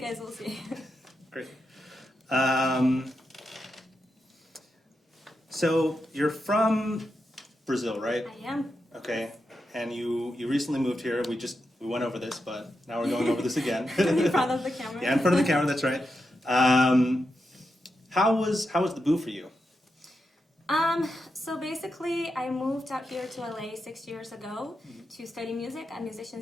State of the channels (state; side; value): normal; both; correlation 0.87